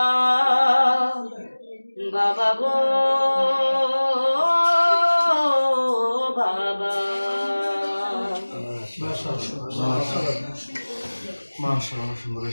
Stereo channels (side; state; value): both; inverted; correlation -1.00